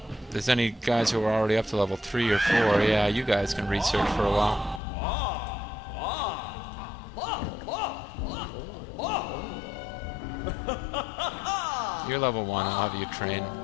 If there's any guys who are already up to level 3 or 4, yeah, you guys can research for a while. You're level 1, I'll have you train.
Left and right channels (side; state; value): right; drops out; at 4.8 s